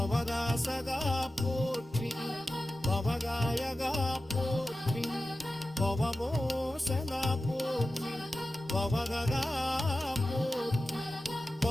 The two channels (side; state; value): both; normal; correlation 0.94